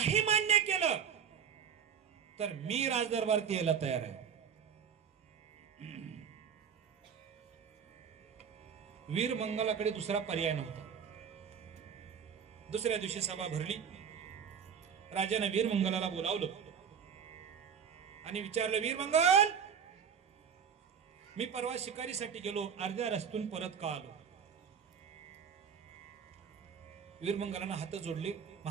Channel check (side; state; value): left; quieter; 7.4 dB